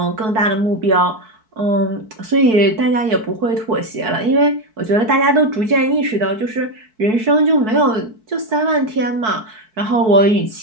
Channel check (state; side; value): late; left; 4.6 ms